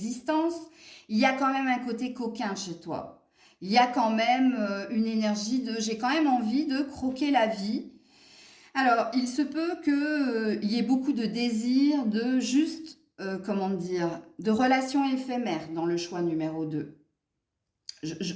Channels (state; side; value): identical; both; correlation 1.00